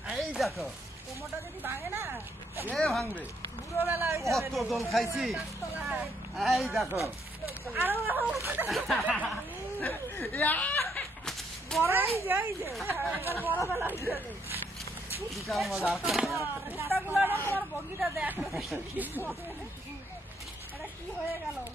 এই দেখো কোমরটা যদি ভাঙে না কে ভাঙবে, বুড়ো বেলা হয়ে যাবে। কত দোল খাইছি। এই দেখো আরো বড়ই যাই যে এবার বড় বেলা হয়ে যাবে। বিশাল মজা। কুত্তাগুলো না তোমার বগিটা দেখ এটা কি হয়ে গেল।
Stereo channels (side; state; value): both; normal; correlation 0.72